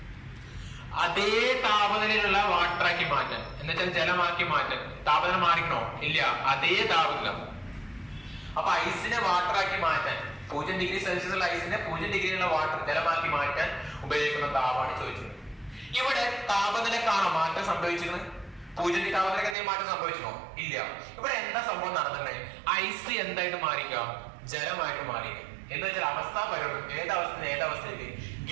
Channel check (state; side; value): drops out; left; at 19.6 s